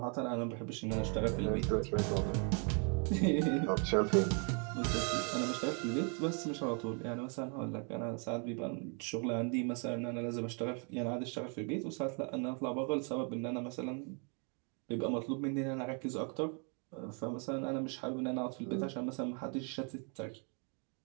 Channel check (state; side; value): quieter; left; 38.2 dB